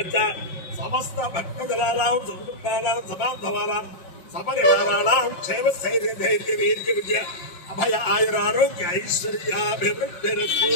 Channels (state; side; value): late; right; 5.6 ms